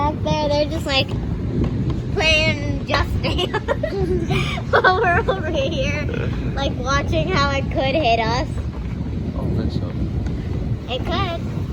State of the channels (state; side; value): identical; both; correlation 1.00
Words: there. They're just like playing Just Dance while we're over here, like watching how it could hit us. I don't think so. It could.